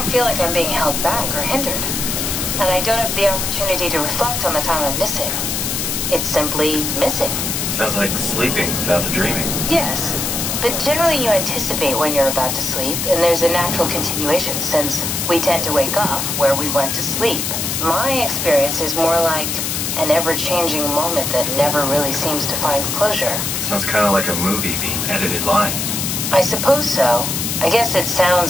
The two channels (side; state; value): left; noise; hiss, 1 dB below the sound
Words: feel like I'm being held back or hindered. And I don't have the opportunity to reflect on the time I'm missing. It's simply missing. Sounds like sleeping without the dreaming. Yes, but generally you anticipate when you're about to sleep, and there's a natural continuation since we tend to wake up where we went to sleep. My experience is more like an ever-changing moment that never really seems to find closure. Sounds kind of like a movie being edited live. I suppose so. I guess it